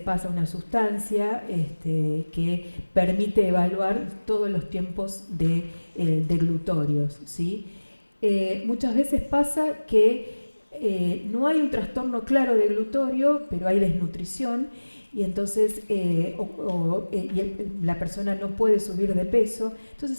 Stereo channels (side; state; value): both; inverted; correlation -1.00